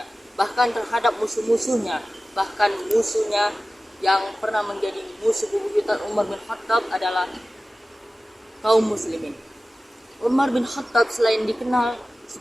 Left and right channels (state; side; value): normal; both; correlation 0.96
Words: bahkan terhadap musuh-musuhnya. Bahkan musuhnya yang pernah menjadi musuh bebuyutan Umar bin Khattab adalah kaum muslimin. Umar bin Khattab selain dikenal